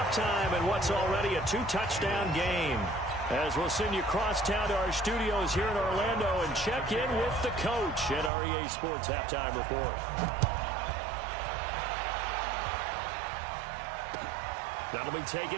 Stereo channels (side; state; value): left; drops out; at 8.3 s